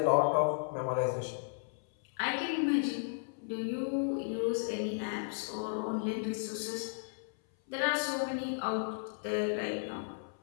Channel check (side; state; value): right; silent; 55 dB below the other